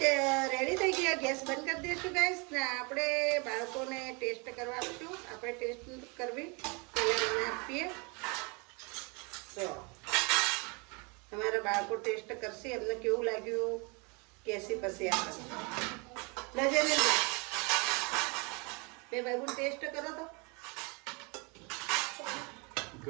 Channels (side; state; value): left; quieter; 30.8 dB